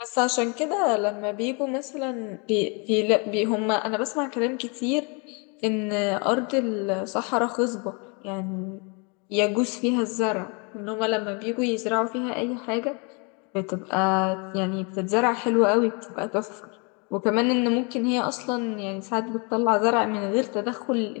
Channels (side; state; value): right; quieter; 33.0 dB